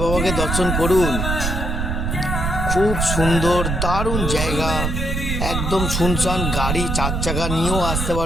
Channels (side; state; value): right; noise; rumble, 1 dB below the sound